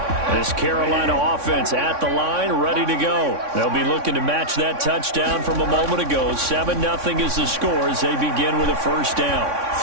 This Carolina offense at the line, ready to go. They'll be looking to match that touchdown from a moment ago. 7-0 is the score as they begin with a first down.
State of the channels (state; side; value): late; left; 3.6 ms